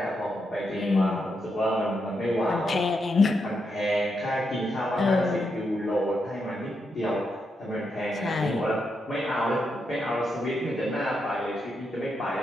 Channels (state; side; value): normal; both; correlation 0.83